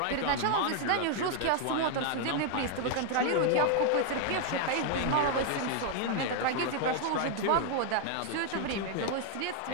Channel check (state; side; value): different; both; correlation 0.00